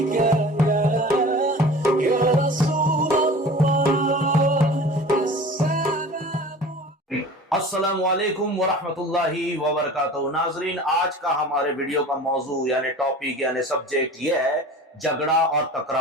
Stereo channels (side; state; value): both; normal; correlation 0.40